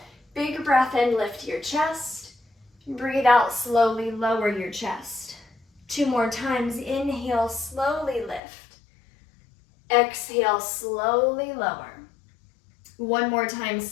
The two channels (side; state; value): right; drops out; at 8.4 s